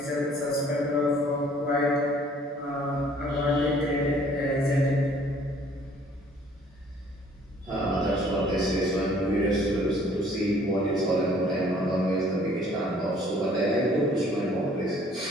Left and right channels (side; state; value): both; normal; correlation 0.57